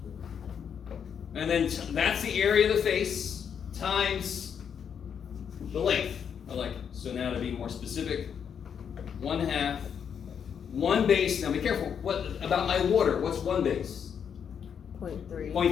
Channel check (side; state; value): right; quieter; 7.6 dB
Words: And then that's the area of the face times the length. I like it. So now to be more specific, 1/2, one base. Now be careful. What about my water? What's one base? 0.3.